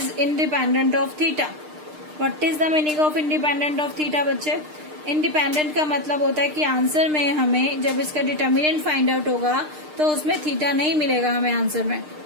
independent of theta. What is the meaning of independent of theta बच्चे? Independent का मतलब होता है कि आंसर में हमें जब इसका डिटर्मिनेंट फाइंड आउट होगा तो उसमें थीटा नहीं मिलेगा हमें आंसर में,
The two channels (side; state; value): left; late; 6.6 ms